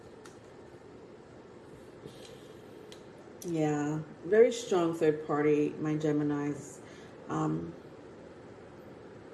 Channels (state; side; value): identical; both; correlation 1.00